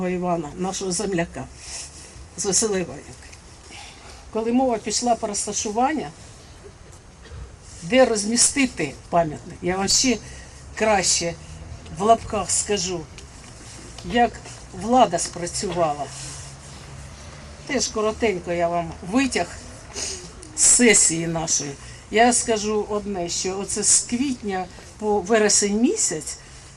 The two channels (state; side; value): identical; both; correlation 1.00